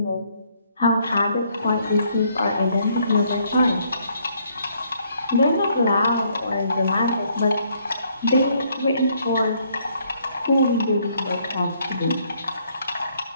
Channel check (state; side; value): inverted; both; correlation -0.68